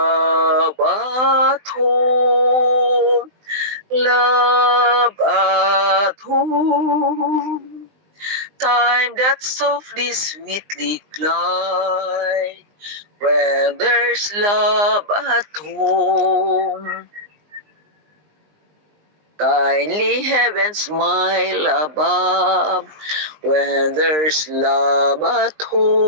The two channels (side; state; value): left; late; 20 ms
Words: at home. Love at home. Time that softly, sweetly glide when there's love at home. Kindly heaven smile above when there's love at